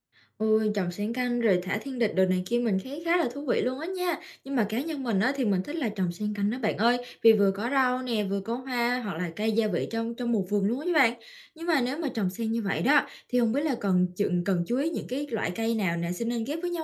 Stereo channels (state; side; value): identical; both; correlation 1.00